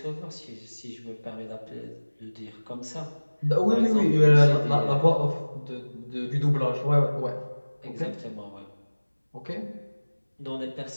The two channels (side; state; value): both; inverted; correlation -1.00